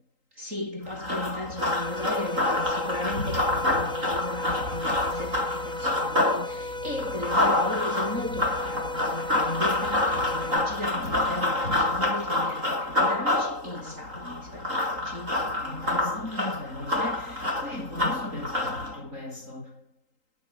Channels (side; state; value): left; late; 3.8 ms